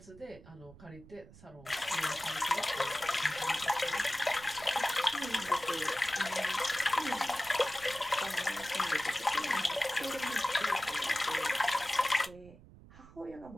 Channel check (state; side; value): noise; right; rumble, 21 dB below the sound